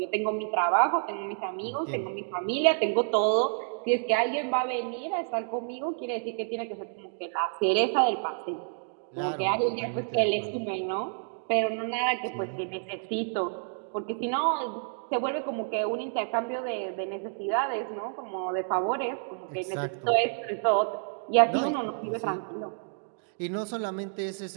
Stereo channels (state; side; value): silent; left; digital silence